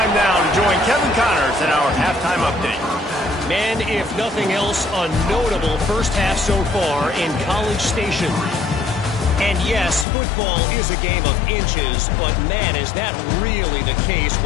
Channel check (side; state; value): right; drops out; at 10.1 s